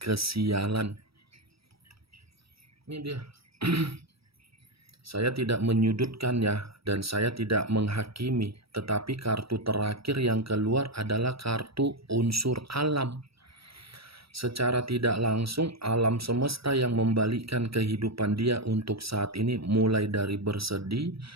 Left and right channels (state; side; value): late; left; 0.76 ms